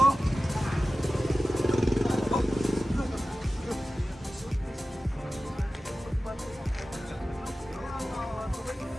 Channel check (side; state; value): both; normal; correlation 0.95